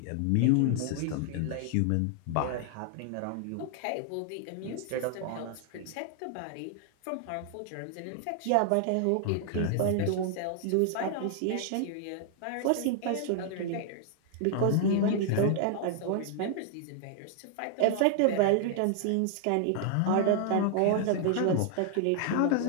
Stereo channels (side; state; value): both; different; correlation 0.00